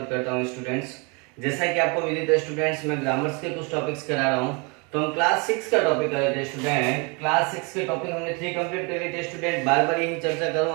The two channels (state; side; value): quieter; left; 31.4 dB